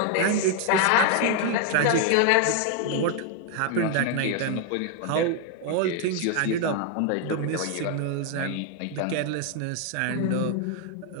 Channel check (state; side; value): different; both; correlation 0.00